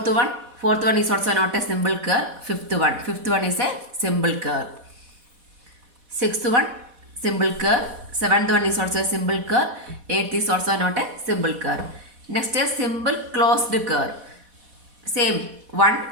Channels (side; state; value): left; late; 4.1 ms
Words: one is also not a simple curve. Fifth one is a simple curve. Sixth one, simple curve. Seventh one is also a simple curve. Eighth is also not a simple curve. Next is simple closed curve. Same one,